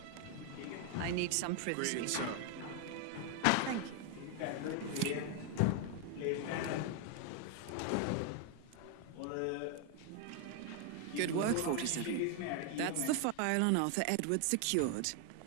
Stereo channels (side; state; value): both; different; correlation 0.01